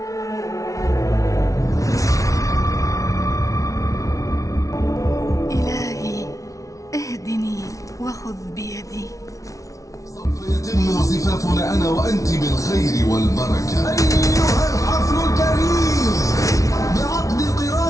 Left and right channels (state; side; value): late; right; 0.16 ms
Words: إلهي اهدني وخذ بيدي. سوف يتم زفافنا أنا وأنت بالخير والبركة. أيها الحفل الكريم بعقد